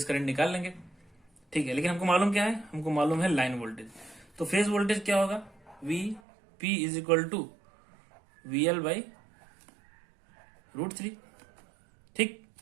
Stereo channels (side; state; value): left; drops out; at 6.2 s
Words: करंट निकाल लेंगे। ठीक है, लेकिन हमको मालूम क्या है, हमको मालूम है लाइन वोल्टेज। तो फेज वोल्टेज क्या होगा, VP is equal to VL by √3। ठीक,